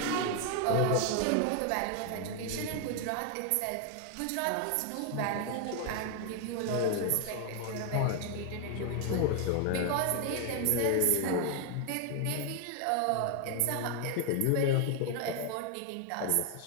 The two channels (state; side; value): different; both; correlation 0.00